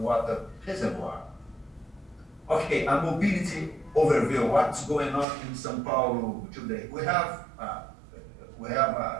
reservoir. Okay, a mobility overview. What's going on in São Paulo today? We have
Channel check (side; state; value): left; drops out; at 5.2 s